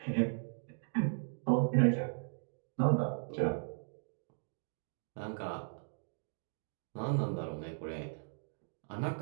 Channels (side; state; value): left; silent; digital silence